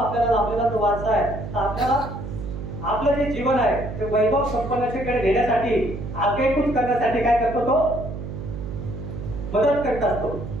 लाभलेला जो वारसा आहे, आपल्याला आपलं जे जीवन आहे ते वैभव संपन्नतेकडे नेण्यासाठी आगेकूच करण्यासाठी काय करतो तो मदत करत असतो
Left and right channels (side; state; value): right; noise; hum, 8 dB below the sound